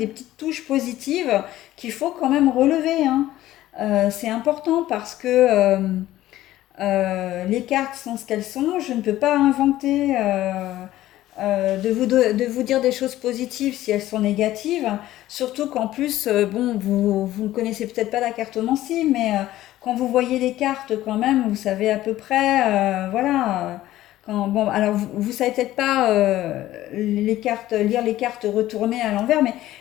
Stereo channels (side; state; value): right; quieter; 14.7 dB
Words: petites touches positives qu'il faut quand même relever, hein. C'est important parce que les cartes sont ce qu'elles sont. Je ne peux pas inventer de vous dire des choses positives si elles sont négatives. Surtout qu'en plus, bon, vous ne connaissez peut-être pas la cartomancie, mais quand vous voyez les cartes, quand même, vous savez à peu près, voilà. Bon, alors vous savez peut-être pas les cartes, lire les cartes retournées à l'envers, mais